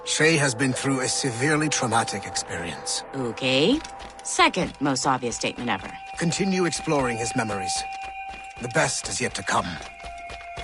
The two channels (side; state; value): both; identical; correlation 1.00